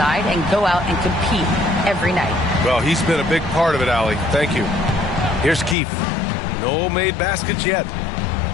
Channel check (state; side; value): drops out; right; at 5.8 s